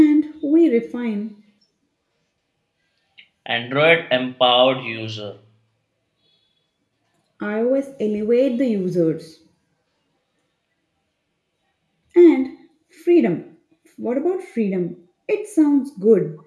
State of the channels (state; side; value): identical; both; correlation 1.00